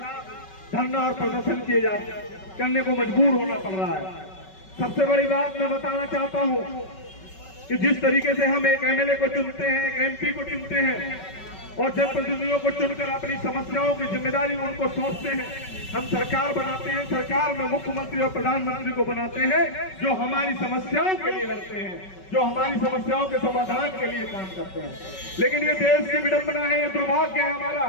धरना और प्रदर्शन करने को मजबूर होना पड़ रहा है। सबसे बड़ी बात मैं बताना चाहता हूं कि जिस तरीके से हम एक एमएलए को चुनते हैं, एक एमपी को चुनते हैं और जनप्रतिनिधियों को चुनकर अपनी समस्याओं की जिम्मेदारी उनको सौंपते हैं, हम सरकार बनाते हैं, सरकार में मुख्यमंत्री और प्रधानमंत्री को बनाते हैं जो हमारी समस्याओं के लिए लड़ते हैं, जो हमारी समस्याओं के समाधान के लिए काम करते हैं। लेकिन ये देश की विडंबना है, ये दुर्भाग्य है हमारा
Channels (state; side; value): late; right; 5.3 ms